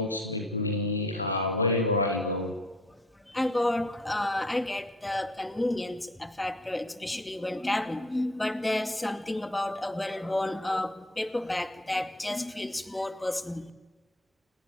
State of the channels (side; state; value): both; normal; correlation 0.54